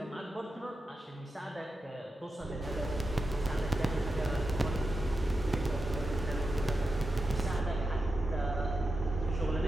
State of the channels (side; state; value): both; normal; correlation 0.89